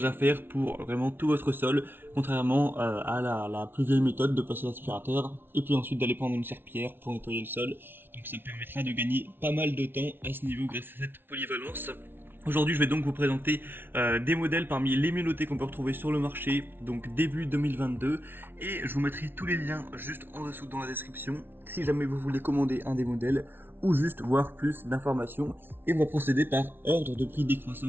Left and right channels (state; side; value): late; left; 0.11 ms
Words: à faire pour vraiment tout votre sol, contrairement à la plus vieille méthode de passer l'aspirateur et puis ensuite d'aller prendre une serpillière pour nettoyer le sol. Donc ça permettra de gagner pas mal de temps à ce niveau grâce à cette polyvalence. Aujourd'hui, je vais donc vous présenter des modèles parmi les mieux notés qu'on peut retrouver sur le marché, donc début 2022, et je vous mettrai tous les liens juste en dessous dans la description, si jamais vous voulez commander un des modèles, ou juste voir plus d'informations, et on va procéder par ordre de prix